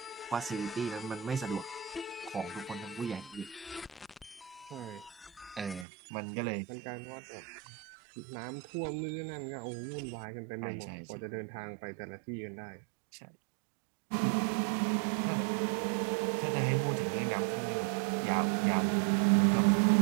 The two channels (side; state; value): left; drops out; at 5.9 s